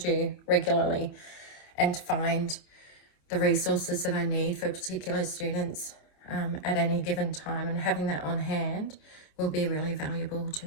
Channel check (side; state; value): right; late; 27 ms